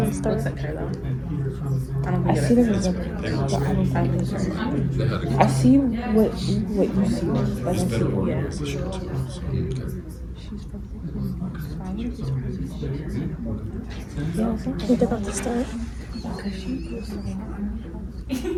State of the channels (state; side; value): identical; both; correlation 1.00